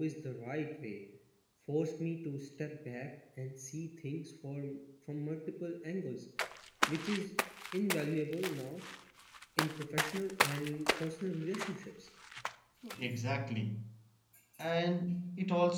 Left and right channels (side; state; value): both; identical; correlation 1.00